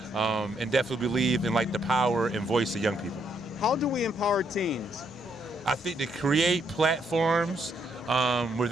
and definitely believe in like the power and voice of young people. How do we empower teens? I think to create platforms where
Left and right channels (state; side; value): normal; both; correlation 0.74